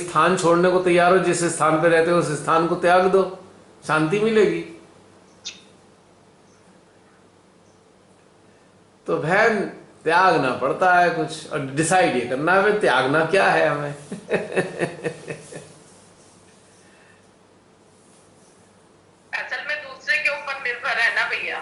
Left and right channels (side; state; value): both; identical; correlation 1.00